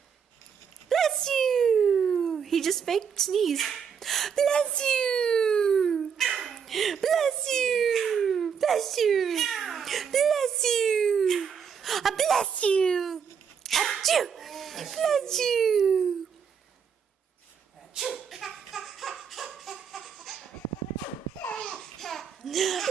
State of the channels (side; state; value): left; quieter; 7.0 dB